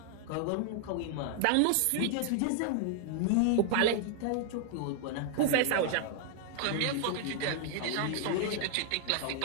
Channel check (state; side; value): different; both; correlation 0.00